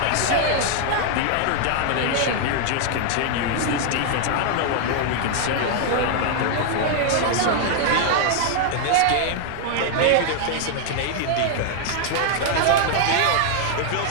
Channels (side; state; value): both; different; correlation 0.00